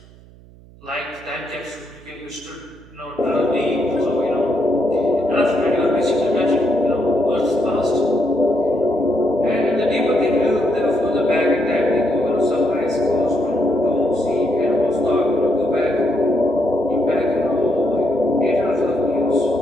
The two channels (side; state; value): right; noise; hum, 23 dB below the sound